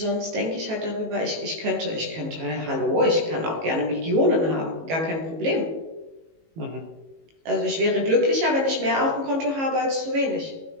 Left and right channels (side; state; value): left; late; 18 ms